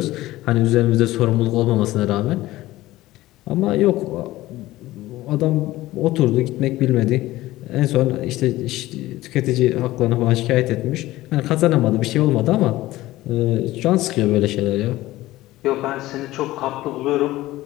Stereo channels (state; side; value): quieter; right; 17.0 dB